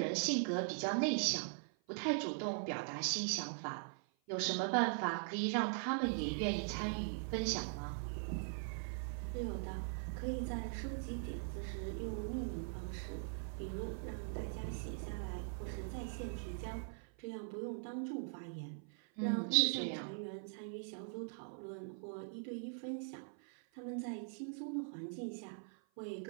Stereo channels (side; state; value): left; silent; 50 dB below the other